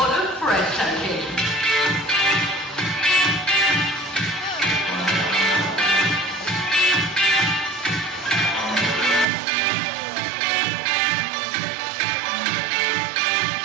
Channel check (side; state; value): left; drops out; at 9.2 s